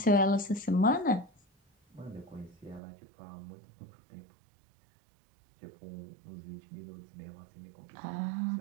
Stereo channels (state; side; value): drops out; left; at 2.8 s